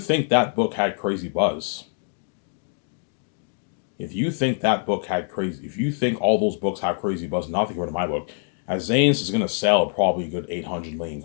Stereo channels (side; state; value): right; silent; 62 dB below the other